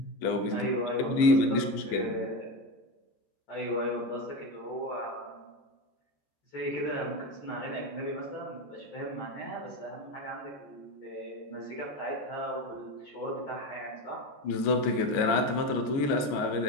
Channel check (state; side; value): late; right; 14 ms